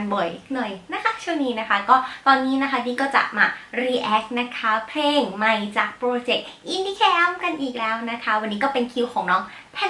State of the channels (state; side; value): identical; both; correlation 1.00